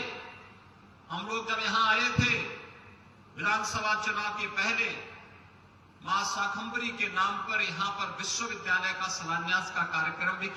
हम लोग जब यहां आए थे, विधानसभा चुनाव के पहले मां शाकंभरी के नाम पर यहां पर विश्वविद्यालय का शिलान्यास का कार्यक्रम भी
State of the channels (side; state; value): both; identical; correlation 1.00